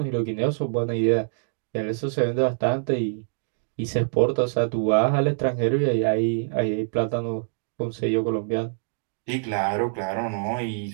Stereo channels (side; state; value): left; silent; digital silence